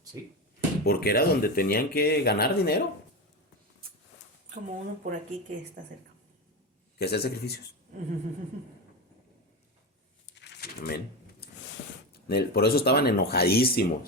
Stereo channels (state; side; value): normal; both; correlation 0.19